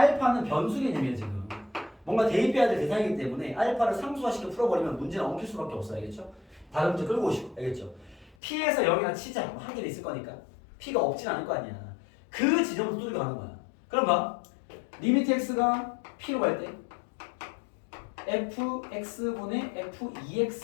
변수 개념이에요 지금. 뭔가 대입해야 될 대상이기 때문에 알파를 상수화시켜 풀어버리면 문제는 엉킬 수밖에 없어요. 알겠죠? 다른 문제 끌고 오시고. 알겠죠? p에서 0이나 치자. 뭐 한 개는 있을 거니까. p가 없진 않을 거 아니야. 그 지점부터 뚫고 가는 거야. 그럼 봐. 리미트 x가 p로 갈 때 fx분의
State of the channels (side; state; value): right; drops out; at 8.3 s